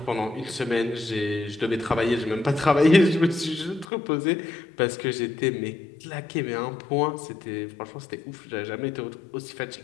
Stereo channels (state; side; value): drops out; right; at 3.9 s